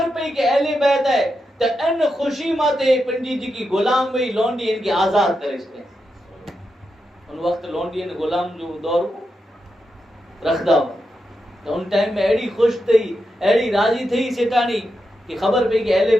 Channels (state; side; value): normal; both; correlation 0.87